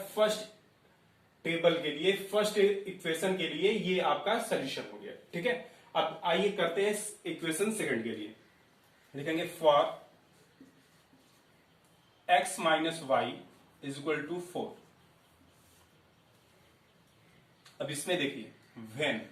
फर्स्ट टेबल के लिए, फर्स्ट इक्वेशन के लिए ये आपका सोल्यूशन हो गया। ठीक है, अब आइए करते हैं इक्वेशन सेकंड के लिए। लिखेंगे for x minus Y is equal to 4। अब इसमें देखिए वेन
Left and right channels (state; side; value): identical; both; correlation 1.00